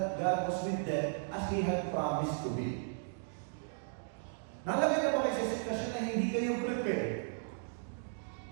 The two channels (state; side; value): silent; left; digital silence